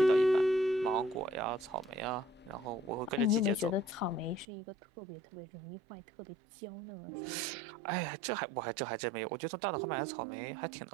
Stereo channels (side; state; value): left; drops out; at 4.5 s